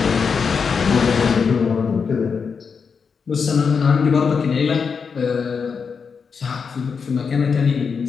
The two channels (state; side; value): quieter; right; 5.8 dB